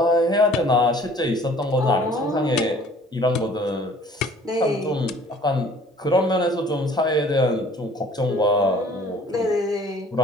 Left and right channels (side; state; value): both; normal; correlation 0.53